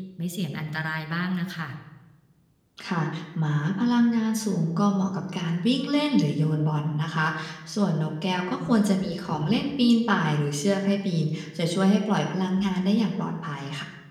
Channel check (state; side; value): identical; both; correlation 1.00